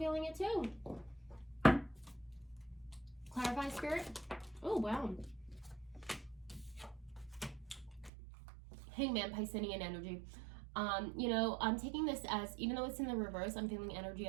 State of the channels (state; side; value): drops out; left; at 8.1 s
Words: it too. Clarify, Spirit. Oh, wow. Hangman, Piscean energy. You know, I'm taking this as, even though it's in the reverse, I'm feeling energy